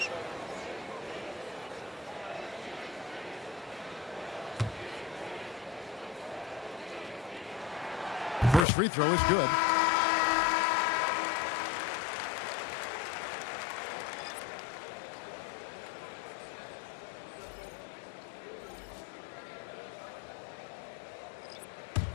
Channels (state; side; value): drops out; right; at 8.7 s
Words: First free throw is good.